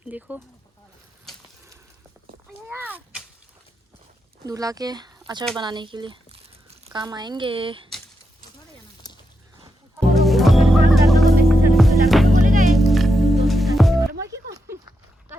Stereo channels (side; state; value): both; normal; correlation 0.85